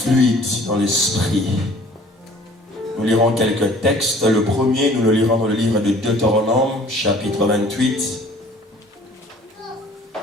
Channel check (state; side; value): normal; both; correlation 0.52